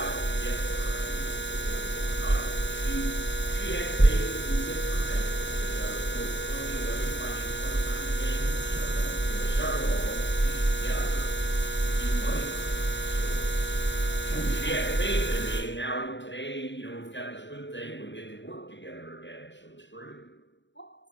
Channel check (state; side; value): late; right; 0.53 ms